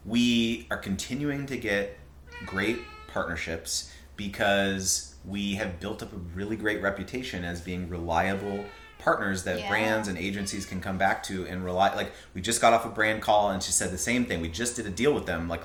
we are continuing to get great partnerships because we have built up a really great reputation as being reliable partners that brands and agencies can come back to and rely. Like, we just got off a brand call and she said the same thing. We just did a deal with them like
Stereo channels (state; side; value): identical; both; correlation 1.00